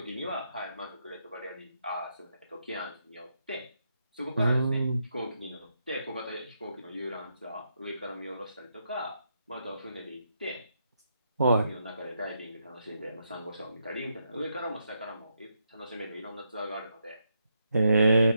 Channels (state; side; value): inverted; both; correlation -0.80